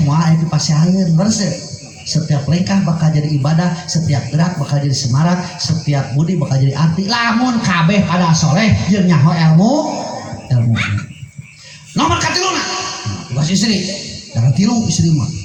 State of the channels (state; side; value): identical; both; correlation 1.00